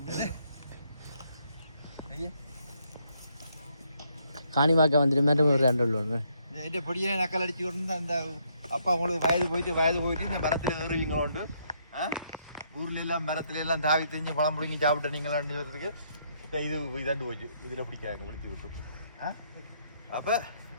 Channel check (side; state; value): both; inverted; correlation -0.72